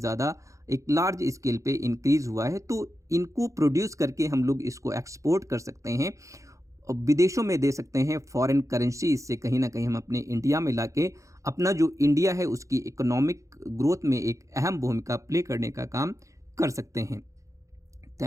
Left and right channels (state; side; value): late; left; 0.15 ms